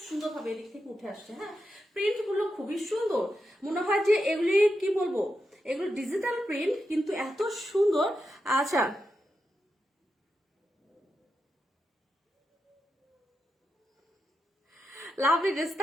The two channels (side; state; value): both; normal; correlation 0.87